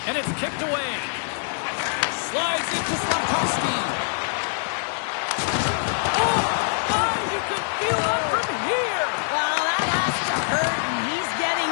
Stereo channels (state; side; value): silent; right; digital silence